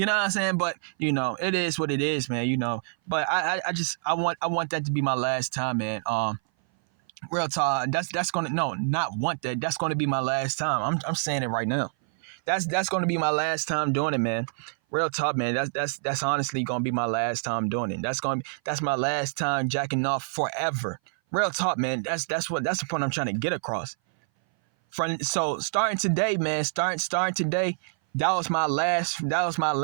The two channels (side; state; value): left; silent; 58 dB below the other